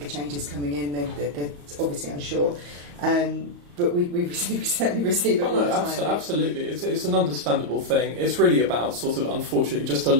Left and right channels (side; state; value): left; late; 34 ms